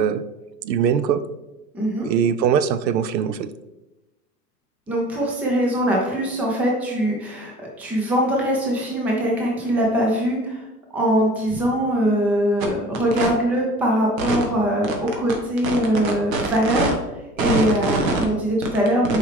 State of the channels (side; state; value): both; normal; correlation 0.44